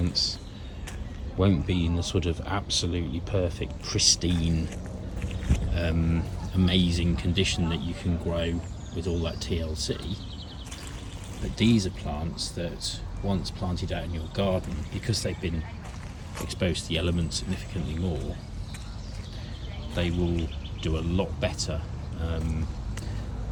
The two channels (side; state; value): both; identical; correlation 1.00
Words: won't be in the sort of absolutely perfect, pristine, amazing condition that you can grow with all that TLC. But these are plants that once planted out in your garden, because they've been exposed to the elements significantly more, they will do a lot better,